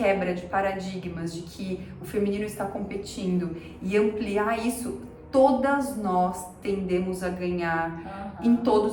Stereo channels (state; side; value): identical; both; correlation 1.00